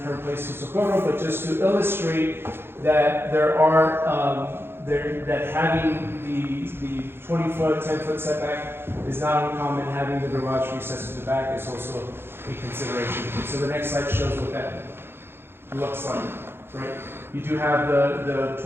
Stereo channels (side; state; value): left; late; 0.11 ms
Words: current place to Socorro, but just to illustrate that that having the 20-foot, 10-foot setback is not uncommon. Having the garage recessed to the back is also a consideration. So the next slide shows what that looks like, right? You do have the